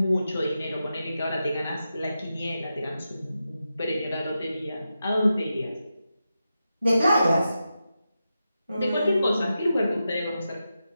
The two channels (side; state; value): both; inverted; correlation -0.89